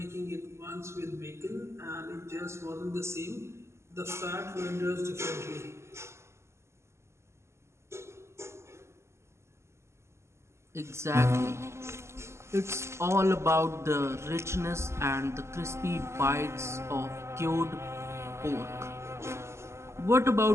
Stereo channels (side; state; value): left; late; 0.13 ms